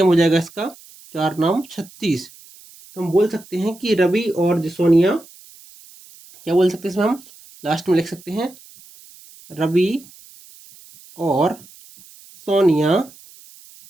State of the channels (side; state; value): right; noise; hiss, 23 dB below the sound